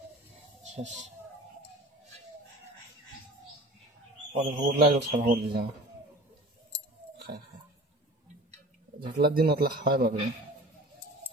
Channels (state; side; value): normal; both; correlation 0.40